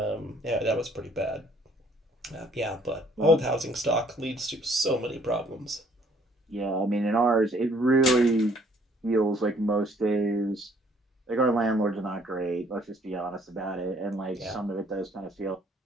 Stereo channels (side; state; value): both; normal; correlation 0.61